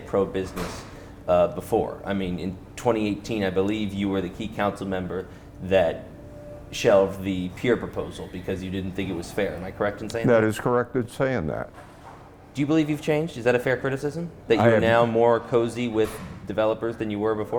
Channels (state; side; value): identical; both; correlation 1.00